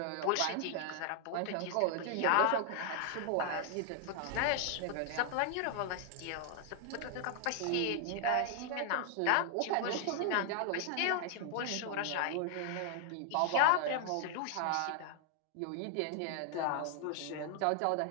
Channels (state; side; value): different; both; correlation 0.00